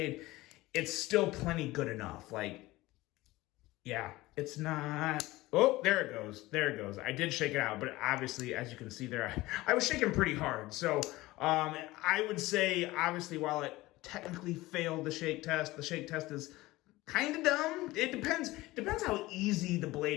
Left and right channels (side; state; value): right; quieter; 19.1 dB